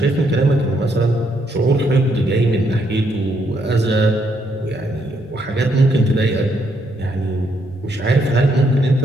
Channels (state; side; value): normal; both; correlation 0.74